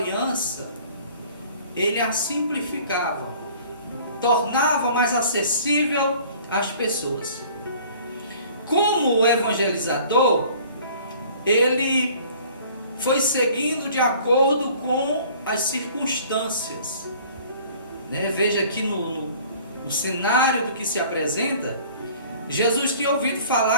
ele a simplificava, tornava mais acessível às pessoas. Como evangelizador, ele foi seguindo de acordo com as circunstâncias. Veja aqui no cenário do que se apresenta, Jesus tinha ouvido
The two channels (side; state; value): both; inverted; correlation -0.51